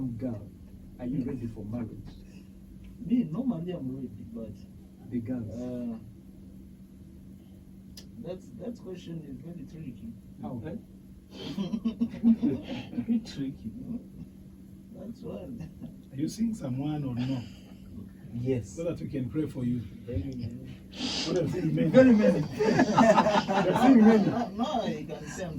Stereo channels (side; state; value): both; identical; correlation 1.00